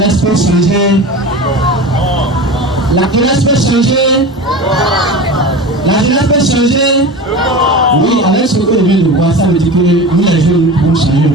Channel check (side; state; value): both; normal; correlation 0.31